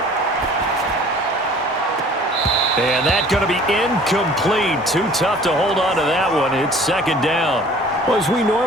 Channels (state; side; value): normal; both; correlation 0.50